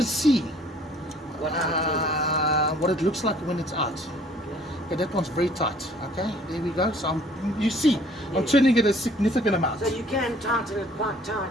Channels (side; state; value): both; normal; correlation 0.56